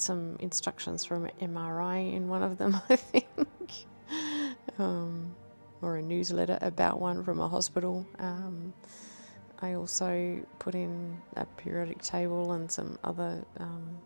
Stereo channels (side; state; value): both; inverted; correlation -1.00